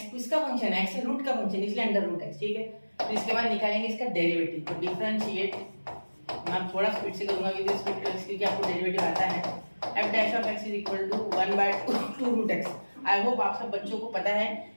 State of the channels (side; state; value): both; inverted; correlation -1.00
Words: किसका फंक्शन है, x है रूट का फंक्शन, इसलिए अंडर रूट x, ठीक है। तो इसके बाद निकालेंगे इसका डेरिवेटिव। तो डिफरेंशिएट, मैं थोड़ा स्पीड से करूंगा क्योंकि आपको डेरिवेटिव आता है। f dash of x is equal to 1/2 root x। I hope आप सब बच्चों को पता है